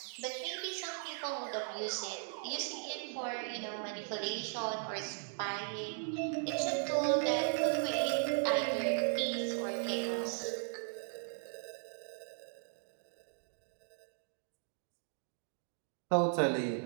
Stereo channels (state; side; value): silent; left; 53 dB below the other